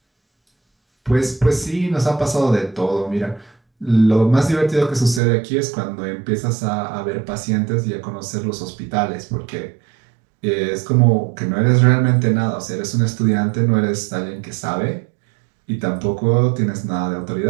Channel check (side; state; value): left; drops out; at 5.2 s